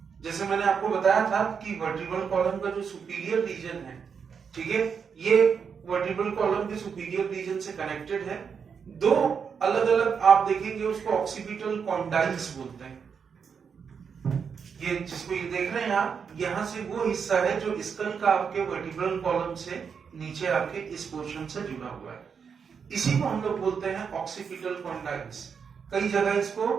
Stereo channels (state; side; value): quieter; left; 6.4 dB